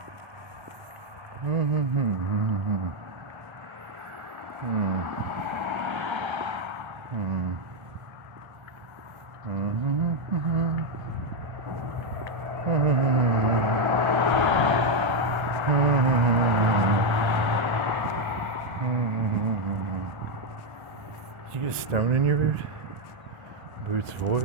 Did you get a stone in your boot? Boot's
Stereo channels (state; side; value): late; left; 1.3 ms